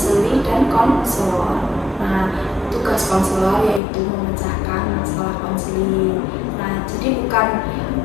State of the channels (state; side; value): drops out; right; at 3.8 s